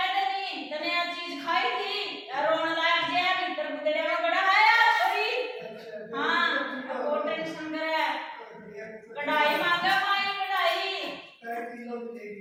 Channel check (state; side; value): identical; both; correlation 1.00